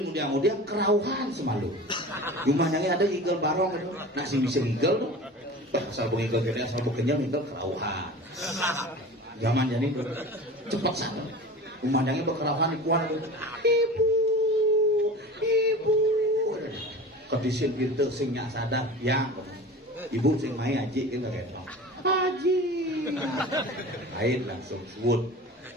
kemudian kerauhan semalu cuma yang ada ngigel barong itu nasi bisa ngigel tuh asal ngigel gede asal kenyal ngigel kerauhan zaman jani itu cepat sana umandangnya berkerauhan di kuan ibu kondisi gitu sing nyak sadar ya ibu sing main aji kita kayak haji kait langsung sebut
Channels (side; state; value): both; normal; correlation 0.36